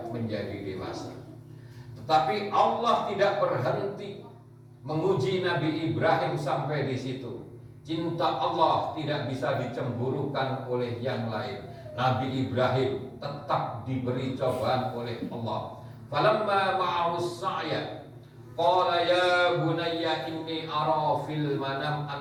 menjadi dewasa. Tetapi Allah tidak berhenti menguji Nabi Ibrahim sampai di situ. Cinta Allah tidak bisa dicemburukan oleh yang lain. Nabi Ibrahim tetap diberi cobaan oleh Allah. Falamma ma'ahus sa'ya qala ya bunayya inni ara fil manam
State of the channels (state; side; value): identical; both; correlation 1.00